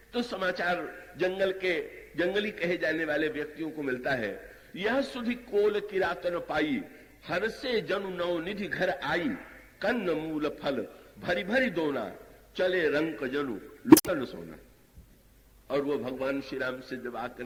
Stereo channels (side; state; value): both; identical; correlation 1.00